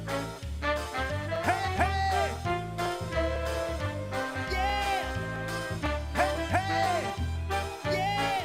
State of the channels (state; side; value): identical; both; correlation 1.00